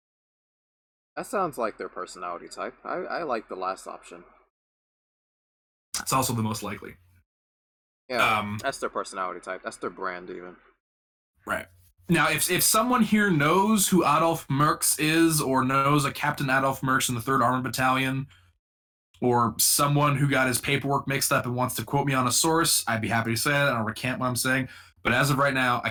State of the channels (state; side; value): identical; both; correlation 1.00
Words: That sounds like their personality type. I like the last option. It's also the most likely. Yeah, that's their personality type. That's their brand, even. Right. Now, if someone here knows who Adolf Mertz is, or knows a Captain Adolf Mertz in the 3rd Armored Battalion, or someone who got his paperwork mixed up and wants to quote me on a source, I'd be happy to say that. I don't recant what I'm saying. But as of right now, I